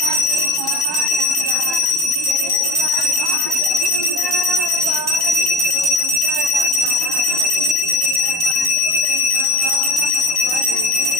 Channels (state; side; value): late; right; 1.1 ms